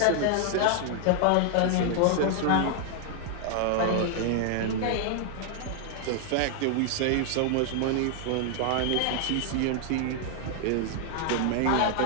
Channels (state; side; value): different; both; correlation 0.00